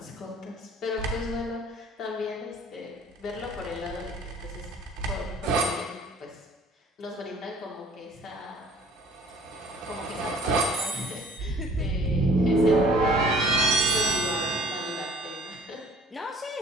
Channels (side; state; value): both; normal; correlation 0.53